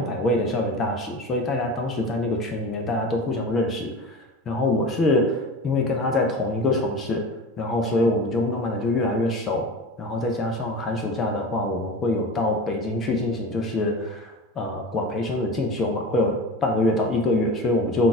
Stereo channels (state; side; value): normal; both; correlation 0.32